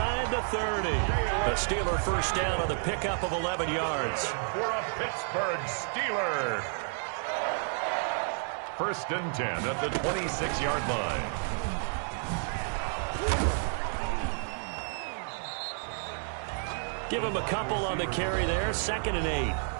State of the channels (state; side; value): silent; left; 57 dB below the other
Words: the 30. A Steeler first down on the pickup of 11 yards. For a Pittsburgh Steeler. First and 10 at the 26-yard line. Give him a couple on the carry there. 2nd and 8.